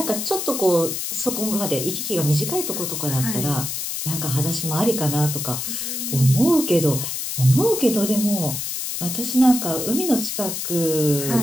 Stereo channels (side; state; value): left; noise; hiss, 4 dB below the sound